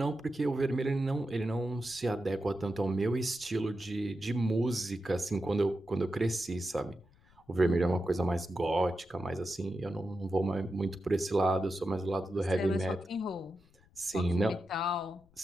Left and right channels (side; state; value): left; noise; rumble, 28 dB below the sound